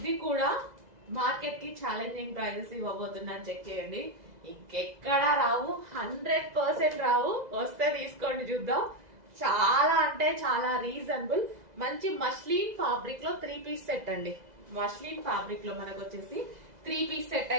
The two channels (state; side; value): late; left; 2.0 ms